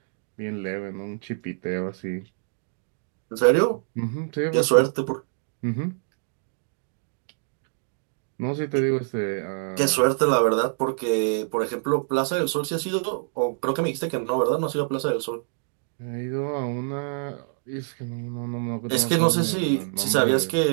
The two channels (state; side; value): silent; left; digital silence